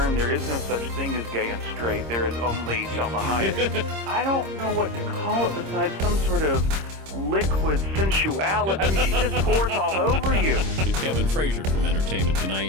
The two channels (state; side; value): late; left; 26 ms